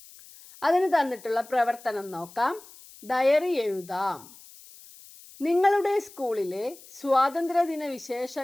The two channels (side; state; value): left; noise; hiss, 21 dB below the sound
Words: അതിന് തന്നിട്ടുള്ള പ്രവർത്തനം നോക്കാം. ഡയറി എഴുതാം. നിങ്ങളുടെ സ്കൂളിലെ സ്വാതന്ത്ര്യദിന